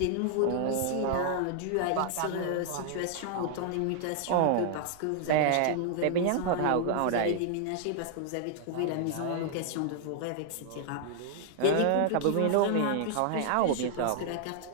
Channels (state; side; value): different; both; correlation 0.00